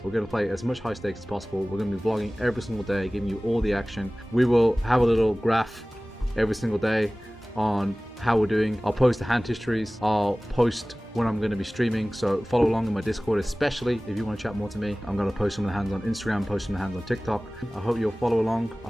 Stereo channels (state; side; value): normal; both; correlation 0.98